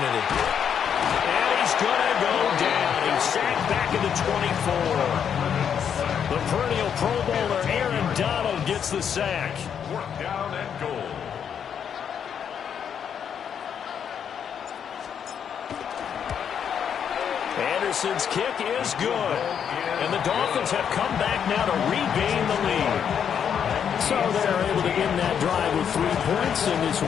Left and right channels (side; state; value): right; quieter; 8.0 dB